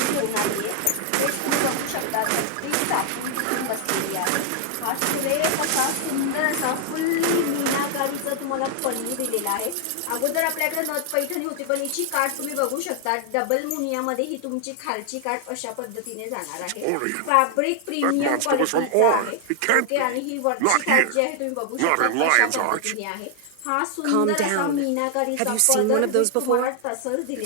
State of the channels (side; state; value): both; different; correlation 0.00